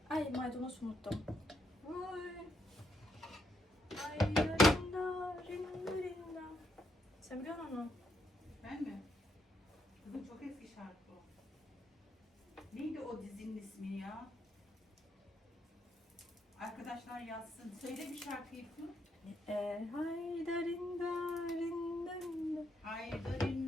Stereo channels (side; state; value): both; normal; correlation 0.77